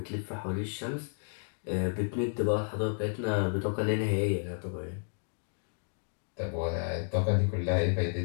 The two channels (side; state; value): right; silent; digital silence